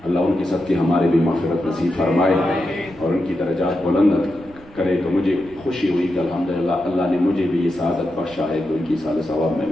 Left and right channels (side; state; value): right; noise; rumble, 23 dB below the sound